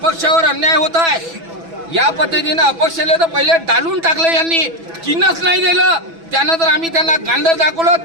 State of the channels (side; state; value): left; late; 6.1 ms